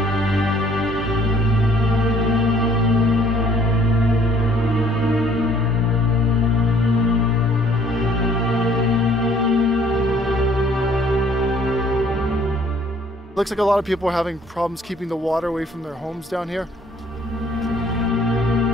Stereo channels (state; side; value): normal; both; correlation 0.59